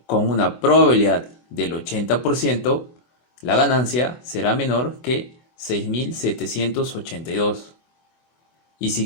con una probabilidad del 80%, la ganancia será menor que 6.782. Y si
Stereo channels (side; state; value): right; late; 24 ms